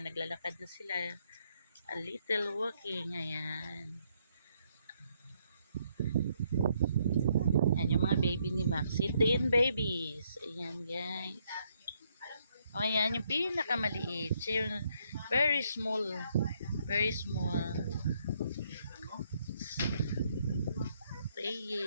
na sila. A little walking, ayan. Ayan yung mga baby ni Maxi, 10 babies. Ayan, guys. O, ayan, yung pinakamaliit. Siya yung very small. Very small.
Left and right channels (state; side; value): inverted; both; correlation -0.72